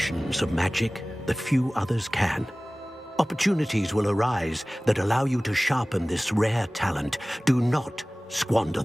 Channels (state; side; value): normal; both; correlation 0.98